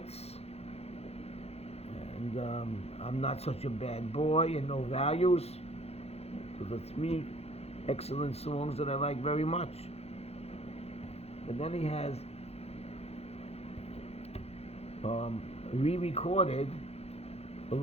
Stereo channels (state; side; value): late; right; 0.30 ms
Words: and I'm Not Such a Bad Boy, and No Values. Those are three excellent songs that I like very much. But then he has re-recorded a